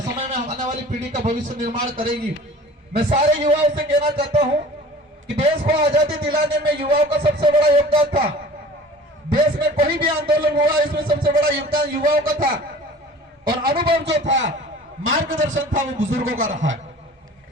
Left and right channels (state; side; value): normal; both; correlation 0.44